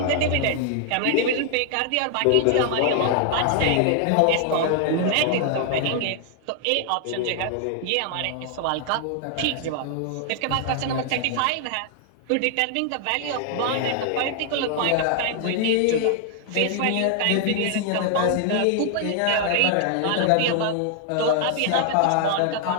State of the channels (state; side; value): different; both; correlation 0.00